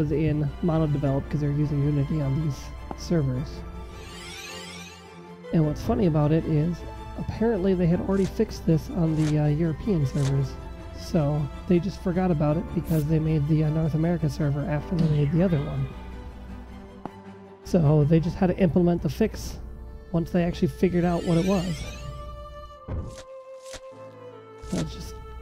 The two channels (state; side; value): identical; both; correlation 1.00